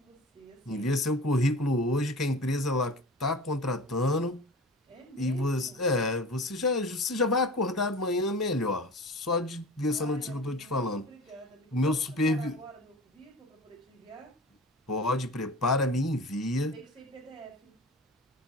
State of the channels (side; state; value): both; normal; correlation 0.37